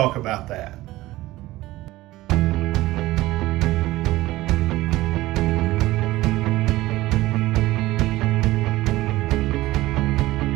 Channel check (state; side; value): quieter; left; 17.5 dB